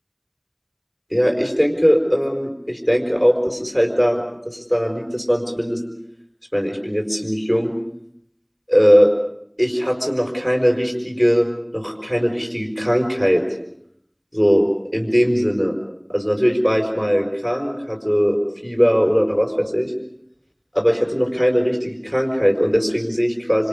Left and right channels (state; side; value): identical; both; correlation 1.00